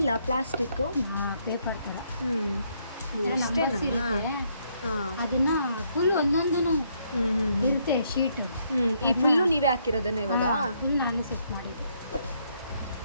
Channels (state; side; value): inverted; both; correlation -0.72